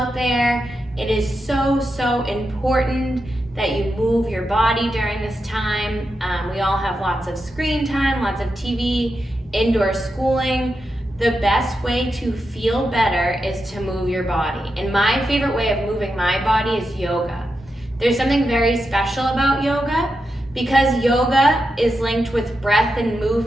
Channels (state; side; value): normal; both; correlation 0.87